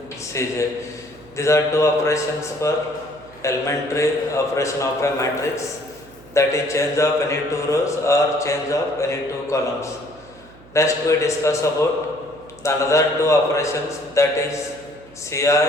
Cj. These are two operations for elementary operation of a matrix, that is change of any two rows or change of any two columns. Next we discuss about the another two operations, that is Ci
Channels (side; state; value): right; noise; hum, 24 dB below the sound